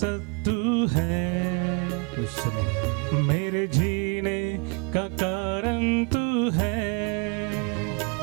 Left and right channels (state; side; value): quieter; left; 33.2 dB